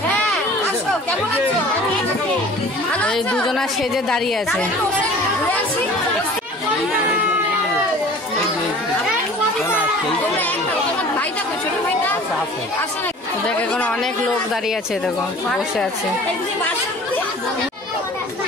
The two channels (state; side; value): normal; both; correlation 0.45